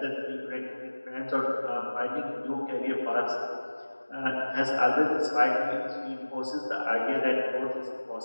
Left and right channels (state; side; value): inverted; both; correlation -1.00